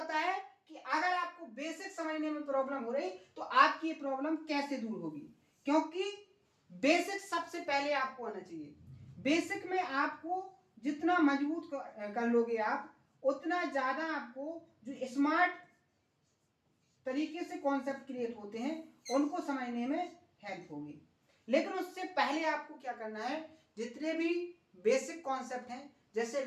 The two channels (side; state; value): both; identical; correlation 1.00